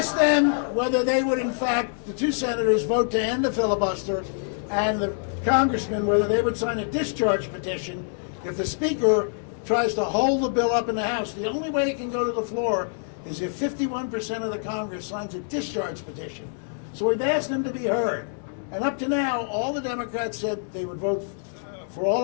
them whether they would, in fact, the 2 senators vote to end the filibuster, and the congressmen whether they would sign a discharge petition if the speaker tries to hold the bill up in the House. The only way it can go to the floor is if 51% of the Congress signs a discharge petition. So we've asked them to be heard. And up to now, all the Democrats said they would vote for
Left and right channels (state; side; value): silent; right; digital silence